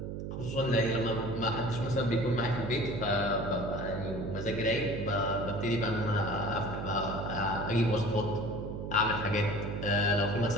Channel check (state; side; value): noise; right; hum, 6 dB below the sound